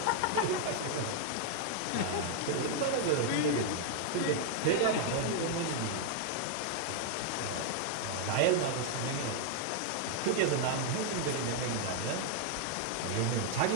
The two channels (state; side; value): different; both; correlation 0.00